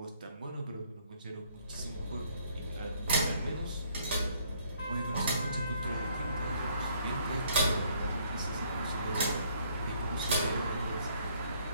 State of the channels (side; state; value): both; inverted; correlation -0.64